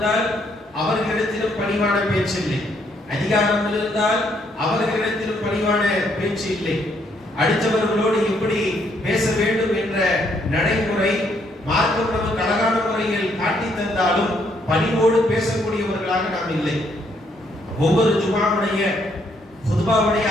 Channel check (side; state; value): both; normal; correlation 0.71